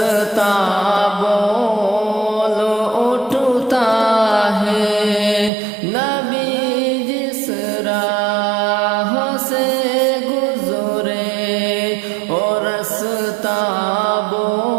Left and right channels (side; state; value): left; drops out; at 5.5 s